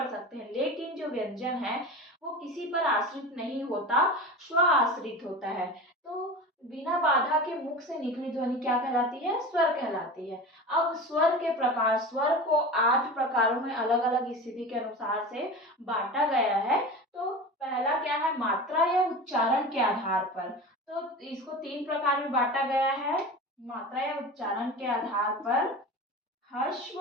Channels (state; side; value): normal; both; correlation 0.31